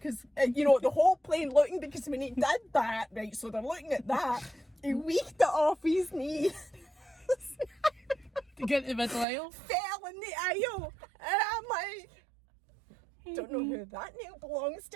you know, the whole plane looking, because when he did that, right, so they're looking at that, he weaked it off his knee. To get to the middle aisle. Fell in the aisle, and I'm like, don't know who that nail belongs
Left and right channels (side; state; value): left; drops out; at 9.2 s